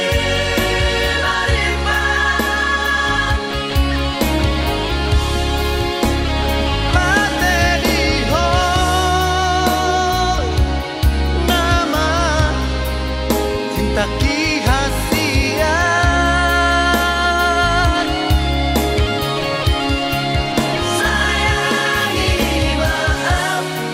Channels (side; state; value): both; identical; correlation 1.00